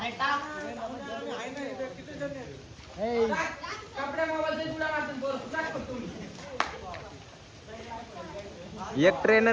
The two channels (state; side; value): identical; both; correlation 1.00